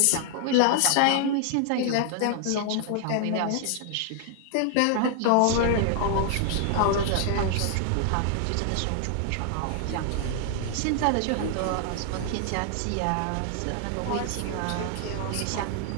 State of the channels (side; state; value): both; different; correlation 0.00